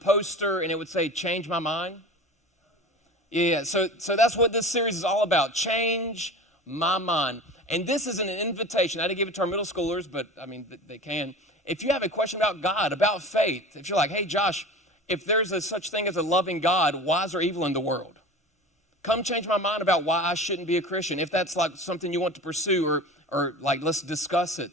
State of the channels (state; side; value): normal; both; correlation 0.35